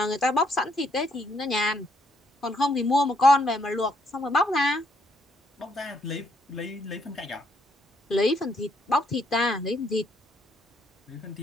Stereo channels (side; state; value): both; normal; correlation 0.71